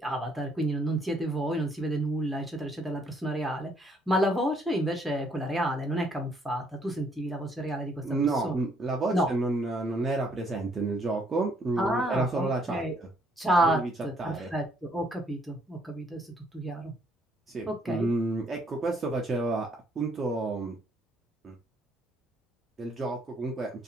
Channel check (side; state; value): both; normal; correlation 0.67